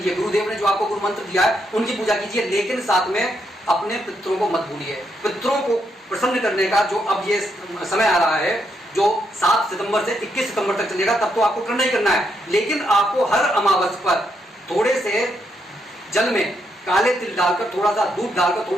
गुरुदेव ने जो आपको गुरु मंत्र दिया है उनकी पूजा कीजिए, लेकिन साथ में अपने पितरों को मत भूलिए। पितरों को प्रसन्न करने का जो अब ये समय आ रहा है, जो 7 सितंबर से 21 सितंबर तक चलेगा, तब तो आपको करना ही करना है। लेकिन आपको हर अमावस पर थोड़े से जल में काले तिल डालकर, थोड़ा सा दूध डालकर,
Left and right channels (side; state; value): both; normal; correlation 0.78